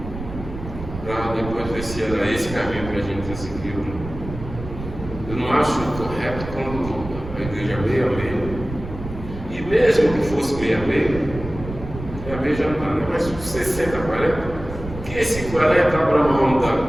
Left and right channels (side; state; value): right; noise; rumble, 10 dB below the sound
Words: para depois ver se era esse caminho que a gente seguiu. Eu não acho correto quando a igreja é meio a meio, e mesmo que fosse meio a meio já não dá, né? Mas 60 a 40, que esse 40 abra mão